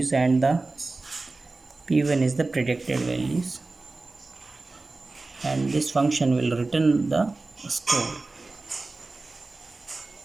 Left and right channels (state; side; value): quieter; left; 3.4 dB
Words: and the p1 is the predicted values, and this function will return the score.